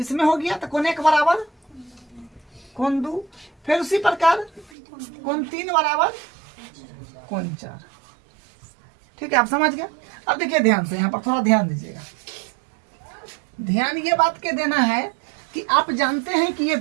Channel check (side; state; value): left; drops out; at 4.7 s